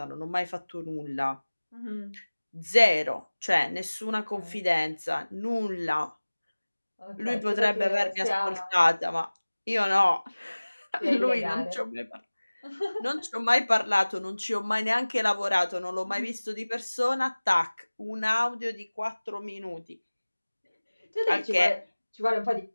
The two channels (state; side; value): inverted; both; correlation -1.00